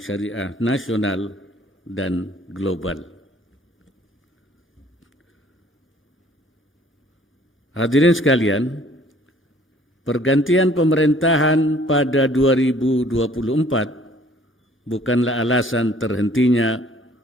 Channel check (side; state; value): both; normal; correlation 0.57